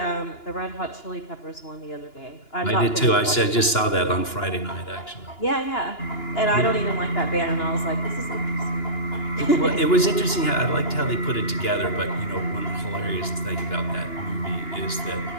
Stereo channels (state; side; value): late; right; 2.9 ms